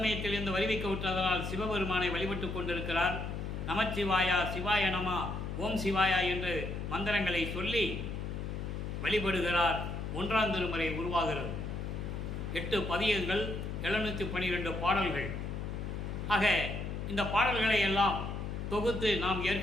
வருவிக்க விட்டதனால் சிவபெருமானை வழிபட்டு கொண்டிருக்கிறார். நமச்சிவாயா, சிவாய நமா, ஓம் சிவாயா என்று மந்திரங்களை சொல்லி வழிபடுகிறார். 1ஆம் திருமுறை உருவாகிறது. 8 பதியங்கள், 712 பாடல்கள். ஆக இந்த பாடல்களை எல்லாம் தொகுத்து நாம்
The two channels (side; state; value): left; noise; hum, 5 dB below the sound